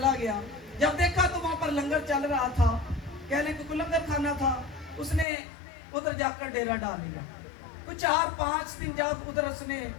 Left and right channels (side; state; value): right; drops out; at 5.2 s